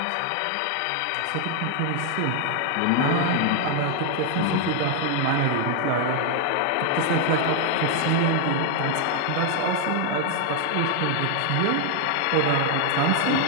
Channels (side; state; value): both; different; correlation 0.00